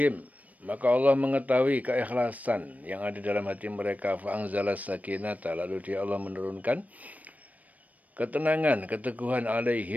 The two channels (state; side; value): late; left; 0.072 ms